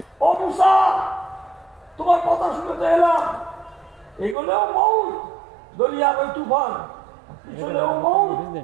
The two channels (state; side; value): drops out; left; at 4.4 s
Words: ও মুসা, তোমার কথা শুনতে এলাম, এগুলোও মউত, দরিয়ার ওই তুফান, পিছনেও মউত।